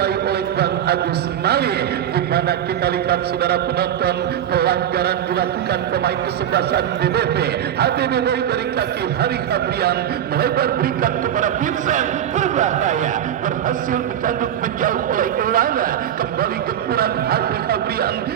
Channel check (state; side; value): quieter; left; 10.3 dB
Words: oleh Bang Agus Mali, di mana kita lihat saudara penonton pelanggaran dilakukan pemain kesebelasan BBP. HBBW dari kaki Hari Fabrian melebar berikan kepada Vincent, berbahaya, berhasil dikandung menjauh oleh Elana. Kembali gempuran Hari Fabrian,